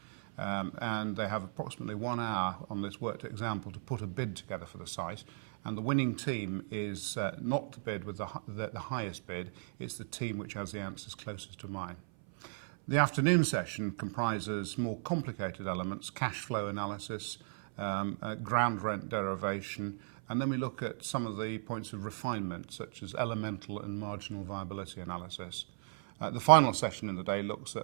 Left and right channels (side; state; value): left; silent; 54 dB below the other